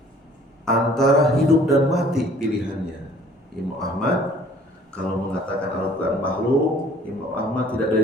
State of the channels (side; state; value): both; normal; correlation 0.54